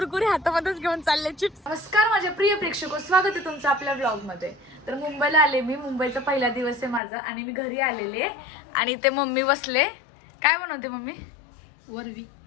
हातामध्येच घेऊन चालले चिप्स. नमस्कार माझे प्रिय प्रेक्षक, स्वागत आहे तुमचं आपल्या ब्लॉग मध्ये. तर मुंबईला आले मी. मुंबईचा पहिला दिवस आहे माझा आणि मी घरी आलेले आणि ते मम्मी बसले. काय बनवते मम्मी? वरवी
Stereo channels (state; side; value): drops out; right; at 7.0 s